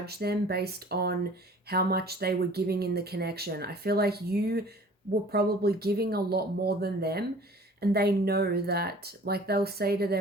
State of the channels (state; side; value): normal; both; correlation 0.49